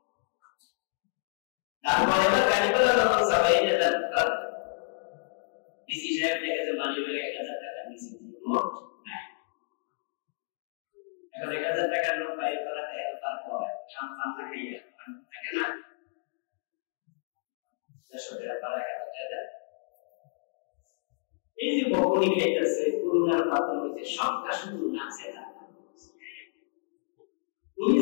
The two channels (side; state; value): right; silent; digital silence